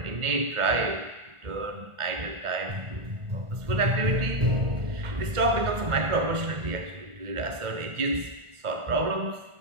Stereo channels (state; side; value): late; left; 1.4 ms